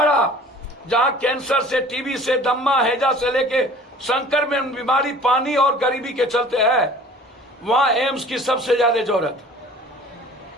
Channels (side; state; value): both; normal; correlation 0.47